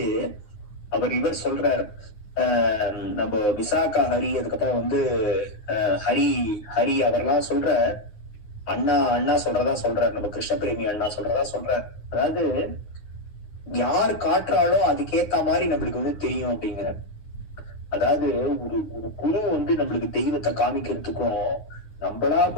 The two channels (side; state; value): right; late; 9.6 ms